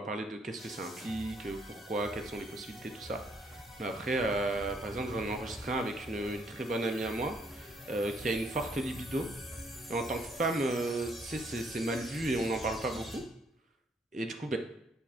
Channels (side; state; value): both; normal; correlation 0.68